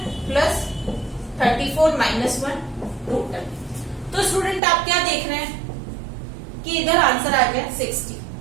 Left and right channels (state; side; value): drops out; left; at 4.6 s